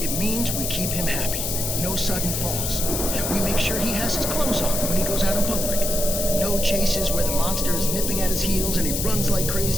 It means we keep him happy. No sudden falls. We make sure he has his clothes on when he goes out in public. No chases where the monster is nipping at his heels and he runs like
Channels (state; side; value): noise; left; hiss, 2 dB below the sound